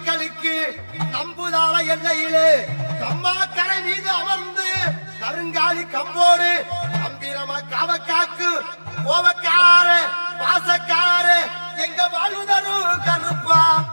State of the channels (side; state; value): both; inverted; correlation -1.00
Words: நம்புதாள எல்லையிலே கம்மா கரை மீது அமர்ந்து கருங்காலி கம்போடு கம்பீரமா காவக்காக்கு கோவக்கார பாசக்கார எங்க வாழ்வுதரு கருப்பா